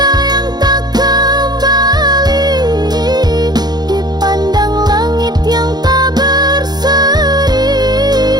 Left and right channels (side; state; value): left; late; 0.20 ms